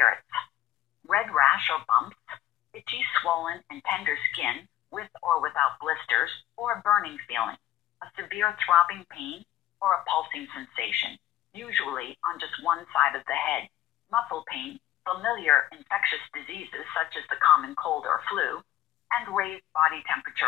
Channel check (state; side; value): quieter; right; 12.8 dB